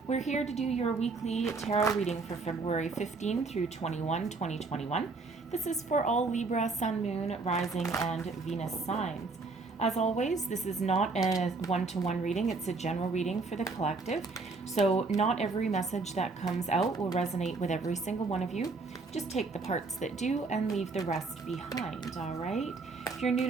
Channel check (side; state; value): left; quieter; 4.0 dB